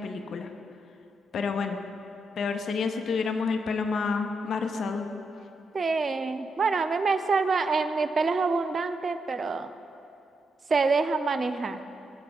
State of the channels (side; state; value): both; normal; correlation 0.82